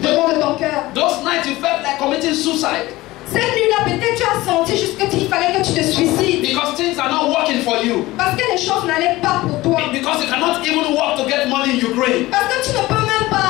devant de ton cœur. Those nights you felt like committing suicide. Cette nuit-là, peut-être tu as senti juste qu'il fallait que tu te suicides. Because things are not working for you. Parce que les choses n'allaient pas pour toi. Because you cannot even work to get money in Ukraine. Parce que tu ne peux même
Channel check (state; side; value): quieter; right; 18.6 dB